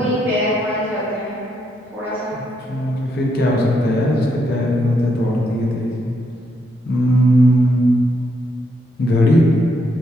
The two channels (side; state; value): both; normal; correlation 0.77